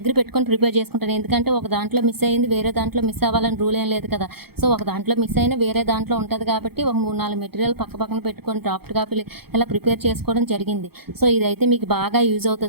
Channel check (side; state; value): left; late; 0.96 ms